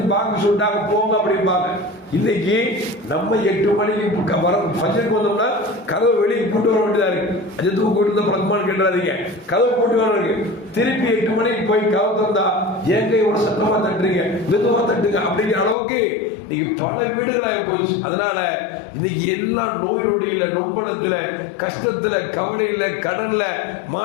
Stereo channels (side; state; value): right; drops out; at 15.8 s